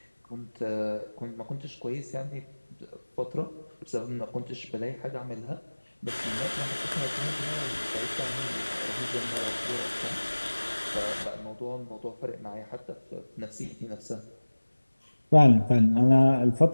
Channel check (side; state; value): both; inverted; correlation -1.00